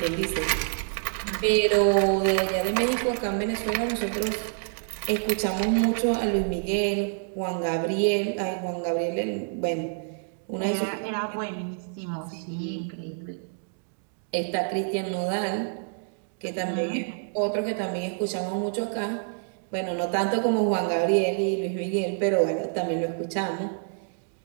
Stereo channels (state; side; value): silent; left; 60 dB below the other